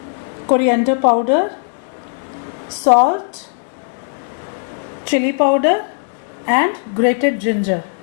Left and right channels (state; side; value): silent; right; 67 dB below the other